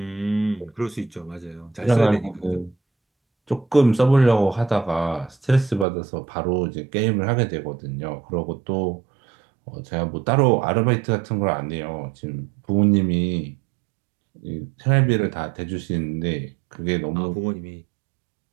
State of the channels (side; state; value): left; drops out; at 5.9 s